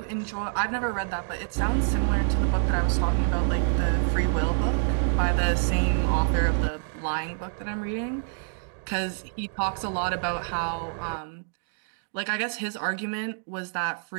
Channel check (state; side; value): silent; left; digital silence